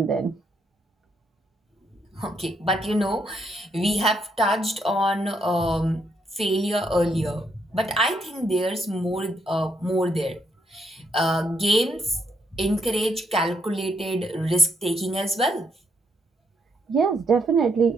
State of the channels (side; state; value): both; normal; correlation 0.75